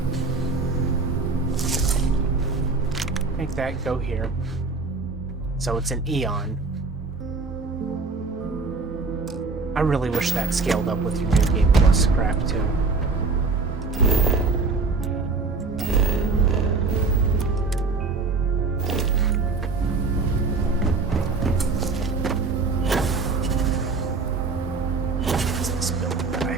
Make that go here. So it's an Eon. I really wish that scaled up with your New Game Plus crap too. What's this building that I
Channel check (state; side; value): quieter; left; 4.1 dB